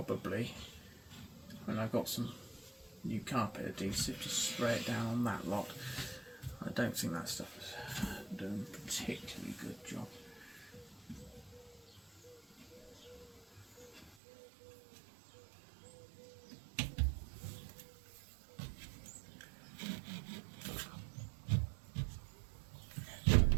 when I've got some new carpet adhesive, just spray it down on that lot. I don't think that stuff is doing a particularly good job.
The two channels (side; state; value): left; drops out; at 14.2 s